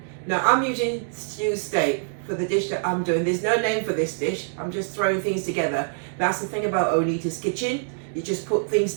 Now, I'm using stew steak for the dish that I'm doing. There's no name for this dish. I'm just throwing things together. That's the thing about Onita's Kitchen. You just put things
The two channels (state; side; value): silent; left; digital silence